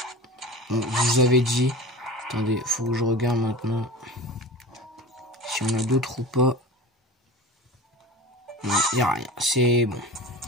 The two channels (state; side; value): normal; both; correlation 0.35